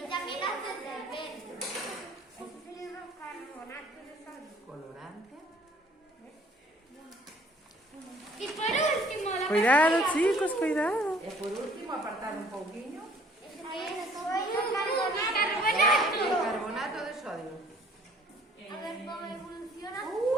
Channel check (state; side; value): normal; both; correlation 0.57